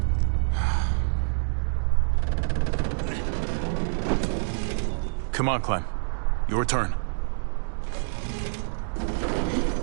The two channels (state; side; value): silent; left; digital silence